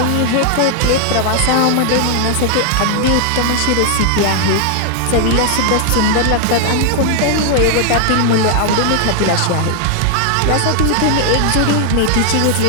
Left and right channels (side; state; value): both; different; correlation 0.00